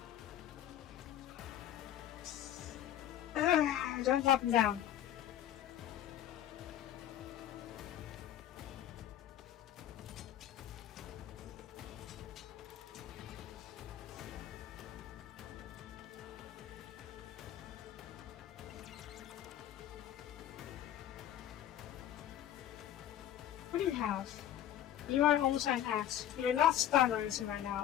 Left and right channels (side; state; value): right; quieter; 11.3 dB